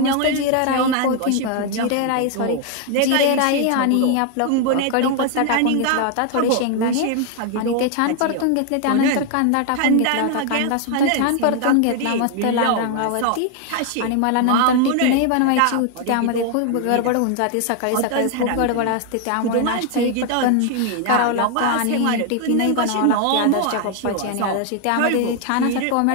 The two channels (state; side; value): different; both; correlation 0.00